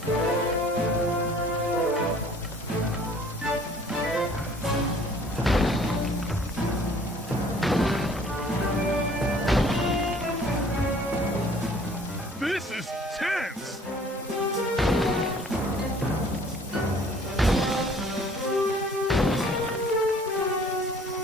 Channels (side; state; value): both; normal; correlation 0.54